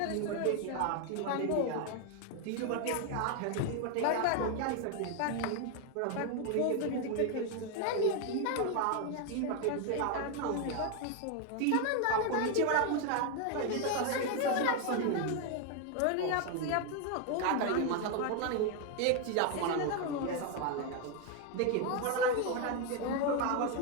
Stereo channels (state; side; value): different; both; correlation 0.01